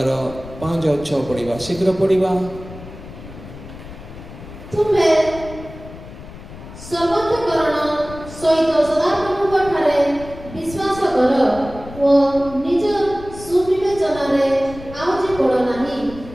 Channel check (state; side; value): noise; left; rumble, 15 dB below the sound